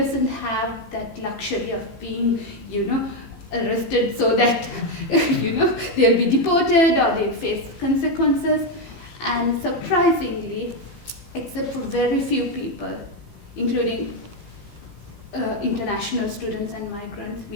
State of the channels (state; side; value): late; right; 18 ms